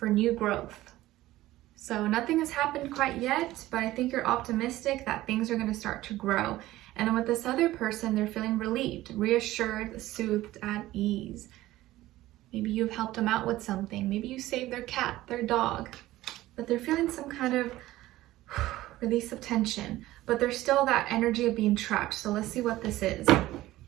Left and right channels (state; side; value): quieter; left; 16.2 dB